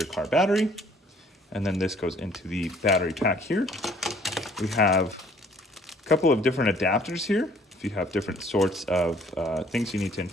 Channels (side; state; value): both; normal; correlation 0.58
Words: car battery, and then this goes into the battery pack here. We have a couple of different adapters here, if you have different sorts of things you need to